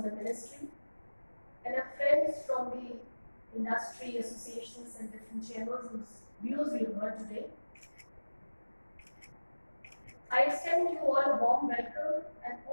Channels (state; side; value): inverted; both; correlation -1.00